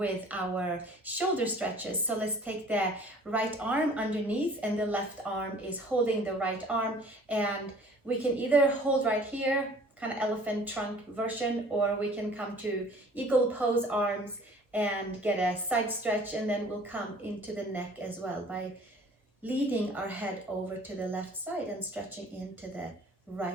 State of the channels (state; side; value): normal; both; correlation 0.50